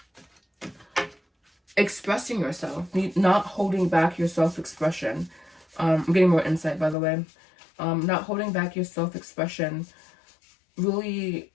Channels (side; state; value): right; drops out; at 7.0 s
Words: expressing yourself, not holding back your self-expression. I'm getting more insight, by the way. Not holding back your self-expression, really